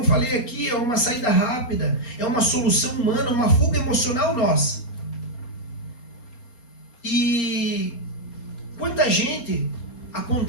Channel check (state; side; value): late; right; 4.3 ms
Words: falei aqui, é uma saída rápida, é uma solução humana, uma fuga emocional nossa. E quanta gente